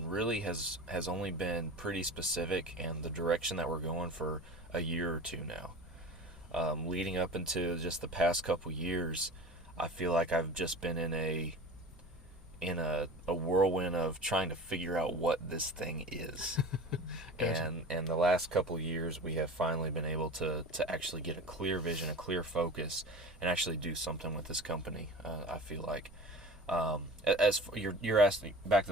really has only been pretty specific, and the direction that we're going for a year or two now. Leading up into just the past couple years, I feel like I've just been in a whirlwind of trying to figure out what this thing is. Gotcha. And the last couple of years, we have finally been able to actually get a clear vision, a clear focus, and actually do something with this company. I feel like, as for, you're asking, back to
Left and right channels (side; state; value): both; normal; correlation 0.35